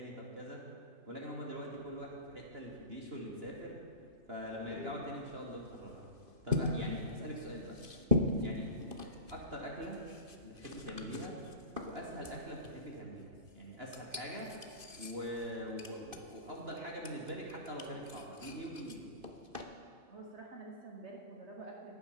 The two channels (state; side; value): late; left; 2.5 ms